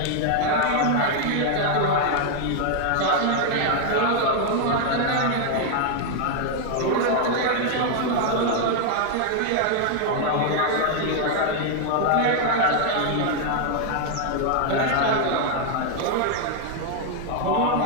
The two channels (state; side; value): different; both; correlation 0.00